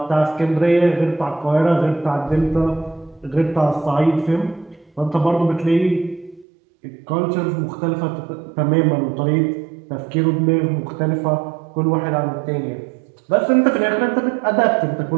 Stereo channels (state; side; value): drops out; left; at 6.5 s